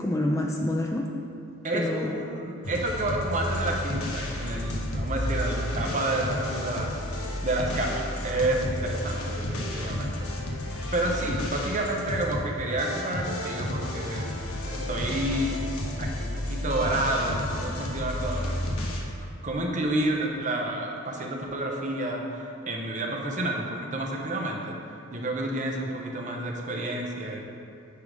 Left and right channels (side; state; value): both; normal; correlation 0.43